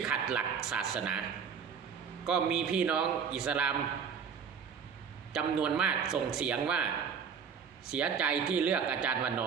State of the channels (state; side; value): quieter; left; 6.8 dB